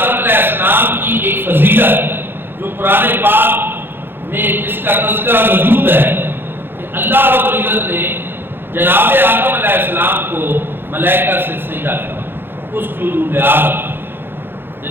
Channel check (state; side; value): late; left; 0.10 ms